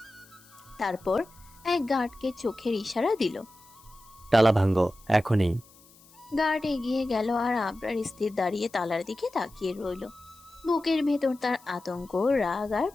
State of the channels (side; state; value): left; noise; hiss, 26 dB below the sound